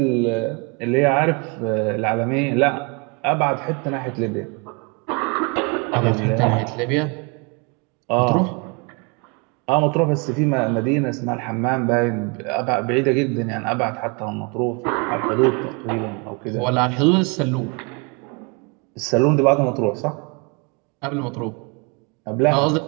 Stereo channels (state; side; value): quieter; left; 31.4 dB